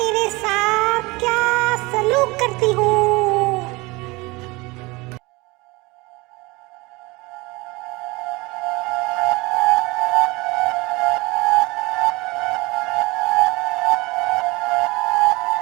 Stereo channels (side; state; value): left; quieter; 23.7 dB